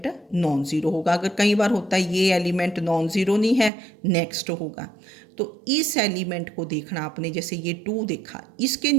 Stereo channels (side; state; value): left; drops out; at 3.7 s